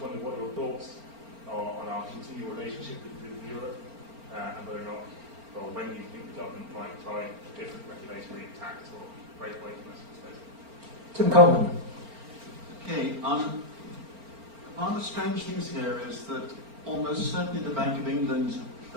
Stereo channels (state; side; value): late; left; 4.4 ms